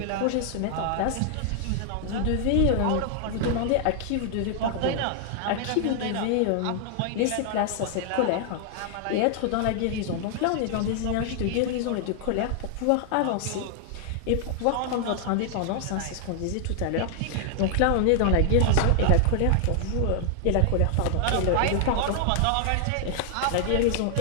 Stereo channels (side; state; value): both; different; correlation 0.00